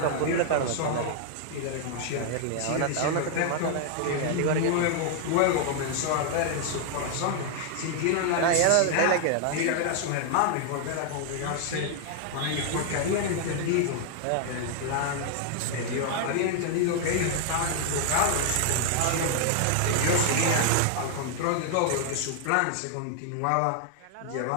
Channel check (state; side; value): different; both; correlation 0.00